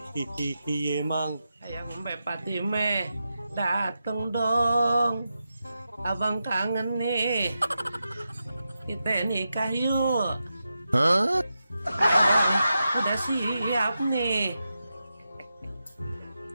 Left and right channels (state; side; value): inverted; both; correlation -0.89